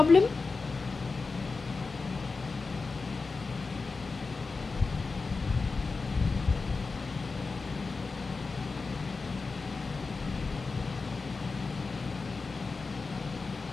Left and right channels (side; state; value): right; quieter; 4.2 dB